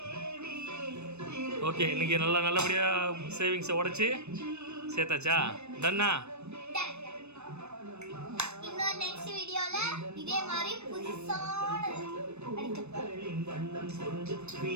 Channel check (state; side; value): late; left; 0.81 ms